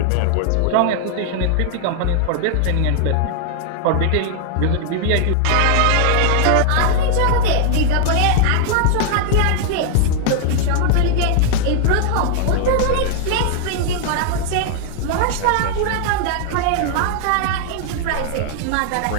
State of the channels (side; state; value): both; different; correlation 0.00